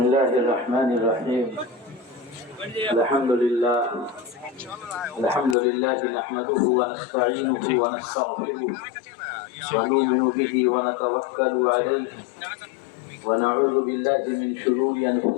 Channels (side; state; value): right; drops out; at 5.6 s